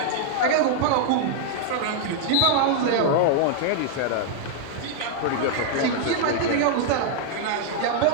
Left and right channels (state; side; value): different; both; correlation 0.00